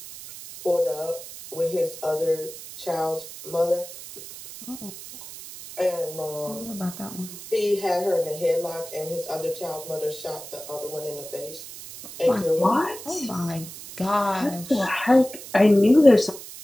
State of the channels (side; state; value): right; noise; hiss, 13 dB below the sound